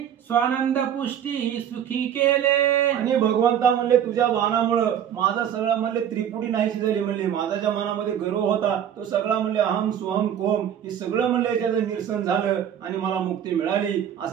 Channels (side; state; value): left; quieter; 9.5 dB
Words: स्वानंद पुष्टी सुखी केले. आणि भगवंता म्हणले तुझ्या बाणामुळं माझा सगळा म्हणले त्रिपुटी नाहीशी झाली म्हणले माझा ज्या मनामध्ये गर्व होता तो सगळा म्हणले अहम सोहम कोम हे सगळं म्हणले त्याचं निरसन झालं आणि मला मुक्ती मिळाली